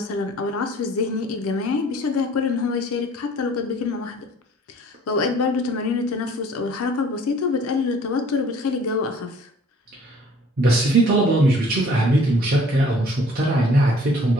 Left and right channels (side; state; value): both; normal; correlation 0.53